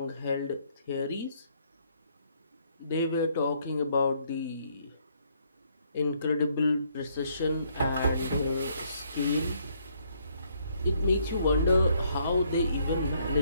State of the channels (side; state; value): both; inverted; correlation -0.69